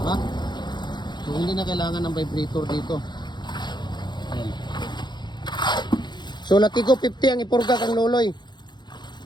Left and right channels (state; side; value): late; right; 0.21 ms